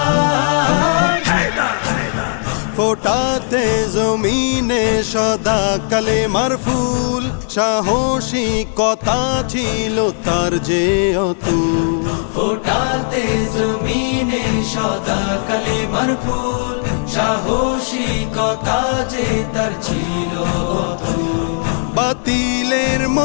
ফোটাতে জমিনে সদা কালেমার ফুল, সাহসিকতা ছিল তার যে অতুল। ফোটাতে জমিনে সদা কালেমার ফুল, সাহসিকতা যে তার ছিল অতুল। বাতিলের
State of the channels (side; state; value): right; silent; digital silence